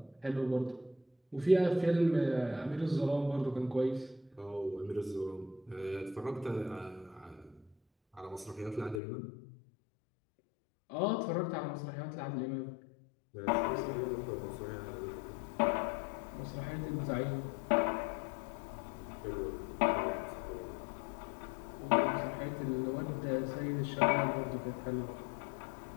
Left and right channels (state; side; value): drops out; right; at 9.0 s